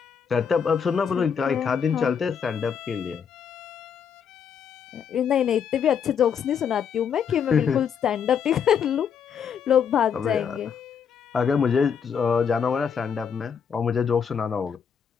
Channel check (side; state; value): right; quieter; 7.3 dB